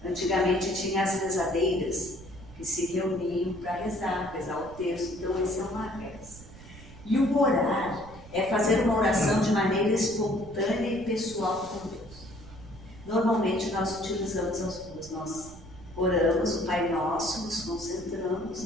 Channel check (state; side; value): noise; right; rumble, 18 dB below the sound